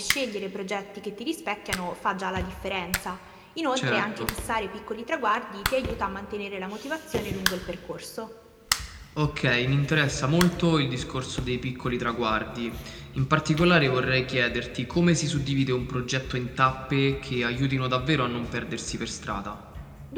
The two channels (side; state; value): both; identical; correlation 1.00